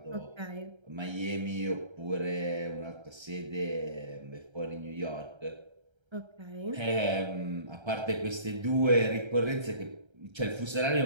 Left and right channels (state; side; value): late; left; 1.3 ms